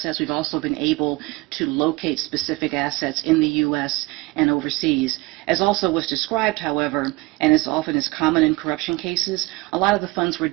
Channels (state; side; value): quieter; left; 22.9 dB